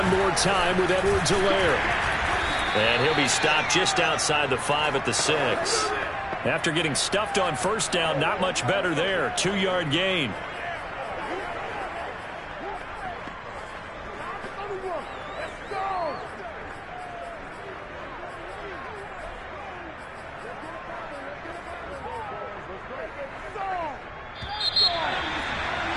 more time with Edwards-Helaire. And he'll be stopped just outside the 5 at the 6. After getting stuffed on first down, not much better there. 2-yard gain.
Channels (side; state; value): both; identical; correlation 1.00